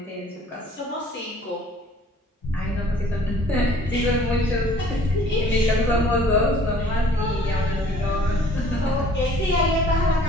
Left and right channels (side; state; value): both; normal; correlation 0.54